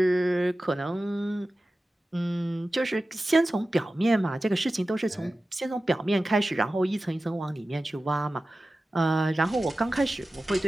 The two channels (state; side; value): normal; both; correlation 0.95